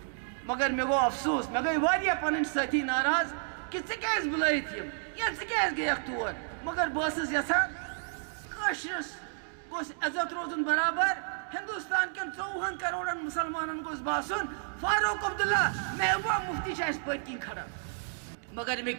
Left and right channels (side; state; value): left; silent; digital silence